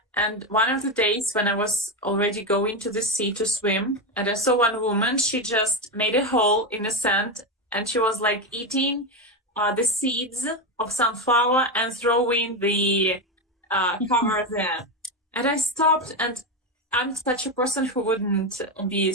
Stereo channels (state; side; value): normal; both; correlation 0.12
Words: And one of the days when I was already going to the sea to swim, and I saw one woman, she just made a hole in the sand and she was like eating the seeds of sunflower and throwing the cover there. And I stopped, and I'm such a person who wouldn't be